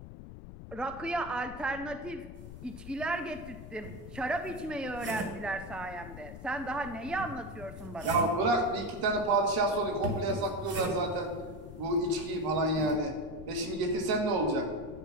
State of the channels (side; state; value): left; noise; rumble, 13 dB below the sound